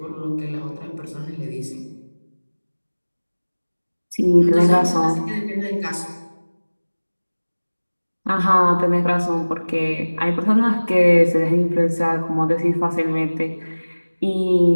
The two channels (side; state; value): both; inverted; correlation -1.00